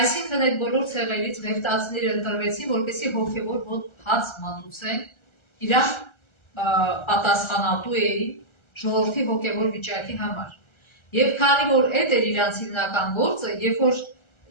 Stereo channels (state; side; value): late; right; 1.3 ms